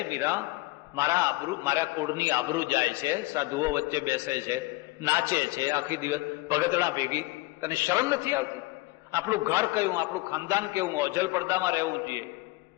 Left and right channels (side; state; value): right; quieter; 21.6 dB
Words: મીરા, મારા કુળની આબરૂ જાય છે, સાધુઓ વચ્ચે બેસે છે, નાચે છે આખી દિવસ ભગતડા ભેગી, તને શરમ નથી આવતી? આપણું ઘર કયું, આપણું ખાનદાન કેવું, અજલ પડદામાં રહેવું જોઈએ.